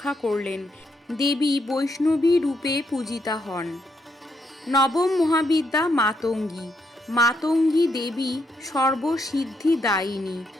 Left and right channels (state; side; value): normal; both; correlation 0.77